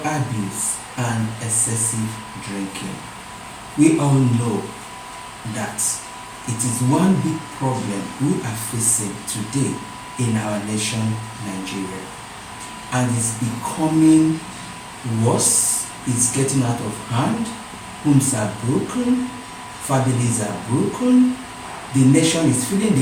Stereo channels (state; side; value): identical; both; correlation 1.00